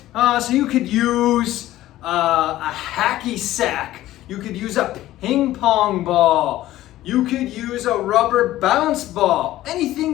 So you could use a hacky sack. You could use a ping pong ball. You could use a rubber bounce ball, anything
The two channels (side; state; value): right; quieter; 14.9 dB